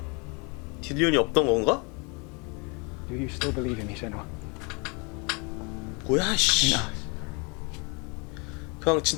딜리온이 없던 건가? Do you still believe in me, Senua? 뭐야 씨. In us? 그냥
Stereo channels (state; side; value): quieter; right; 31.4 dB